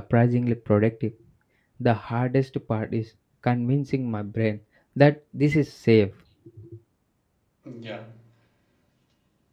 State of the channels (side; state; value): both; identical; correlation 1.00